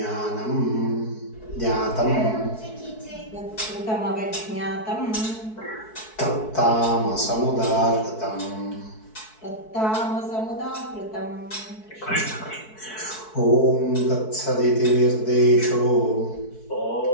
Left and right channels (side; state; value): right; late; 4.6 ms